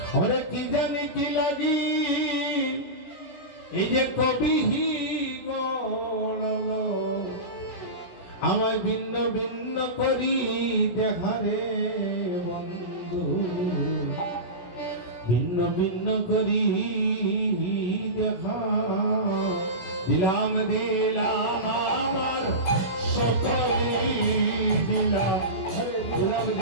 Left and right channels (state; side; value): late; right; 16 ms